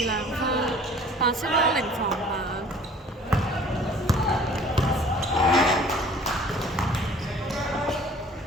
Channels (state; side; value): normal; both; correlation 0.50